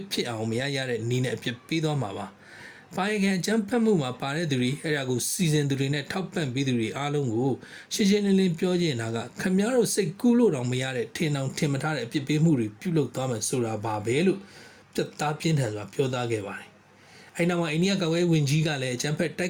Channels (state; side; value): identical; both; correlation 1.00